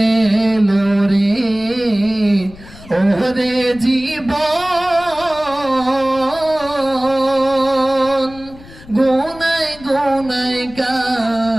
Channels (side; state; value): left; noise; rumble, 20 dB below the sound